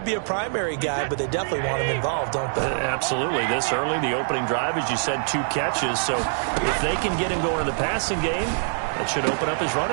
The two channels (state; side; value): silent; left; digital silence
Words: be a primary guy, but they definitely want him involved, don't they? Absolutely. This early, the opening drive, as you said, 2 catches. So if they can get him going in the passing game, that should open up his